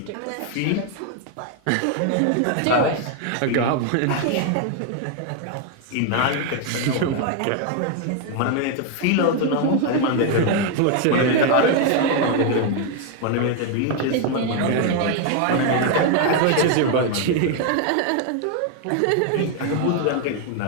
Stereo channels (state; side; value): different; both; correlation 0.01